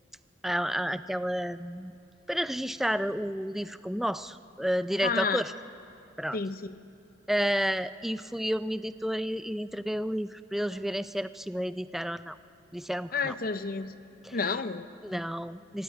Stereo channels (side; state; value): both; normal; correlation 0.82